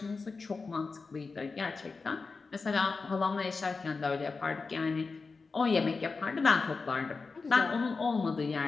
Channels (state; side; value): quieter; right; 4.3 dB